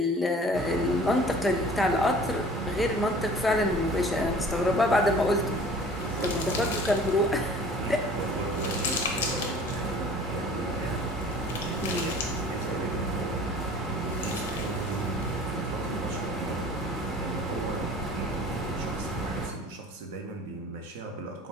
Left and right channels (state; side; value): normal; both; correlation 0.47